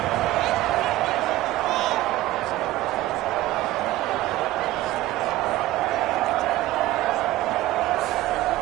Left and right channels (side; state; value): left; quieter; 16.2 dB